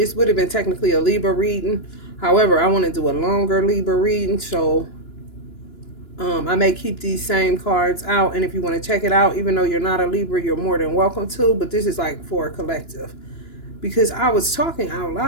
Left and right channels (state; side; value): late; right; 2.9 ms